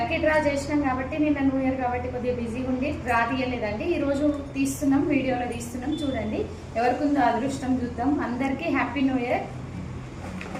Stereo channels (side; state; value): both; identical; correlation 1.00